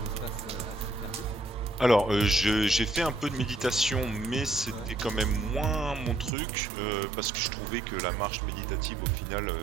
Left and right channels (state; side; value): drops out; left; at 6.3 s